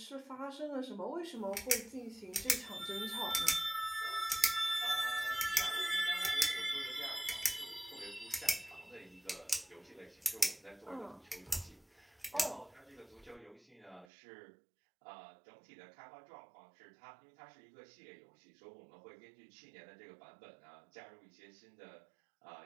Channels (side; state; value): left; drops out; at 14.1 s